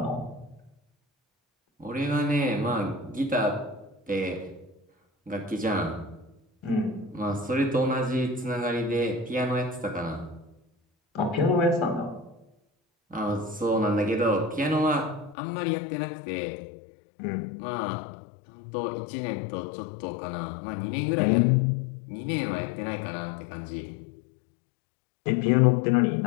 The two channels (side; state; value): right; drops out; at 15.4 s